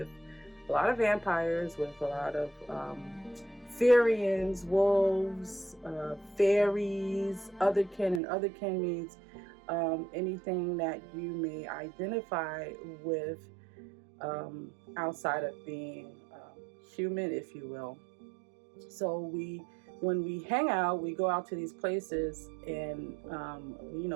a lot of vampires, with a lot of Fairies, wolves, fairies, otherkin, and otherkin means anything that you may identify with outside of being human, if you will. So when we hang out, we go out to these places and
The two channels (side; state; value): left; drops out; at 8.2 s